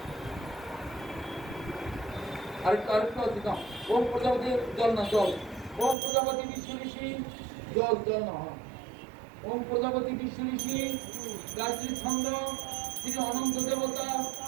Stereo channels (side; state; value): left; drops out; at 6.0 s